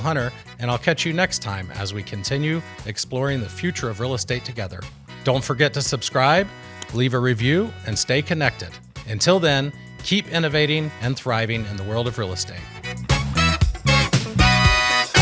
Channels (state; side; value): identical; both; correlation 1.00